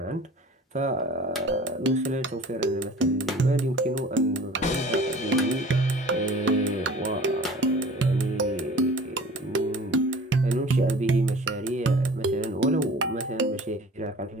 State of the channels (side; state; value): both; normal; correlation 0.44